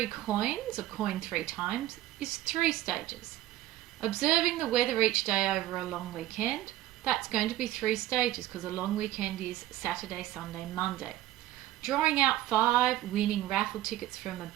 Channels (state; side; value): quieter; left; 14.7 dB